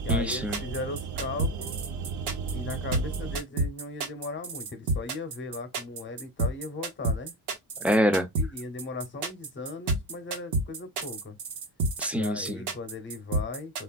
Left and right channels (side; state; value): both; normal; correlation 0.24